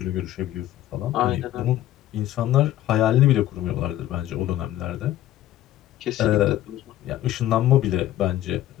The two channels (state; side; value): quieter; right; 13.6 dB